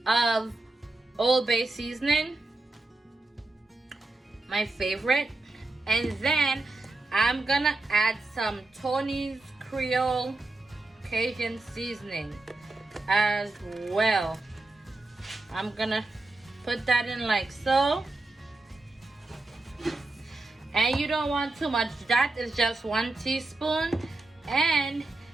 of Old Bay seasoning, my favorite. And then I'm gonna add some Tony's Creole Cajun seasoning as well. I'm gonna put that in like so. And you don't want too much. That is just 1 teaspoon. And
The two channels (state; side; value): quieter; left; 3.1 dB